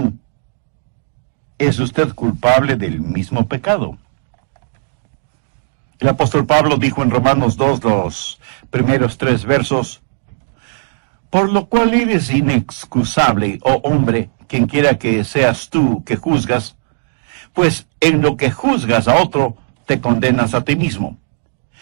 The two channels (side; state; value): left; silent; digital silence